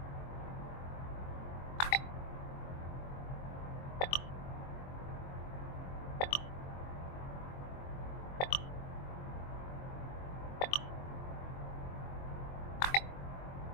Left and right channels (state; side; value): late; right; 22 ms